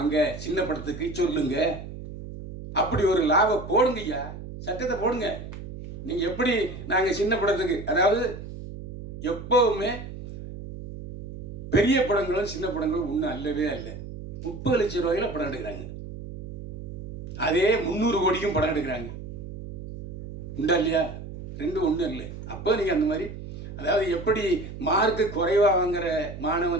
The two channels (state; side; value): noise; right; hum, 10 dB below the sound